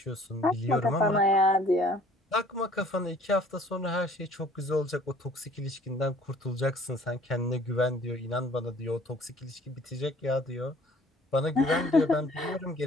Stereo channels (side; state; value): both; normal; correlation 0.54